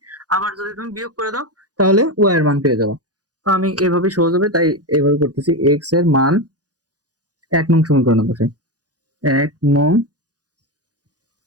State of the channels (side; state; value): left; late; 0.68 ms